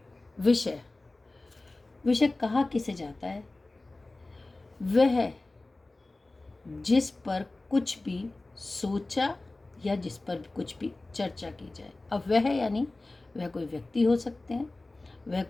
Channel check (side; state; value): right; quieter; 3.0 dB